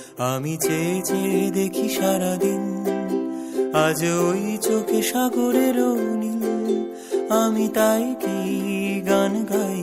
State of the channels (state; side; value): identical; both; correlation 1.00